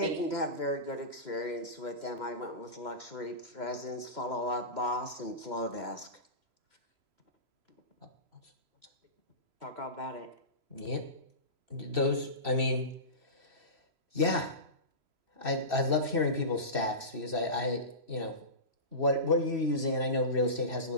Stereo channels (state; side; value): late; left; 3.0 ms